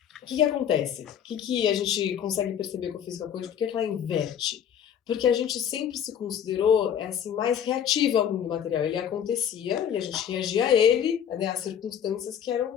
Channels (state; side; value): quieter; right; 8.9 dB